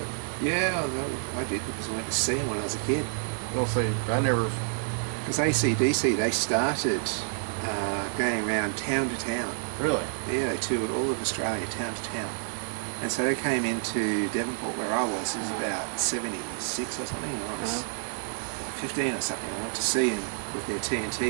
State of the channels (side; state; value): left; silent; digital silence